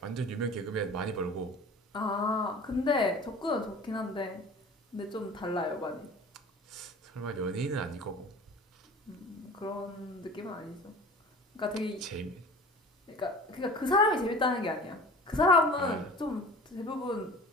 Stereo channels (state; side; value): normal; both; correlation 0.41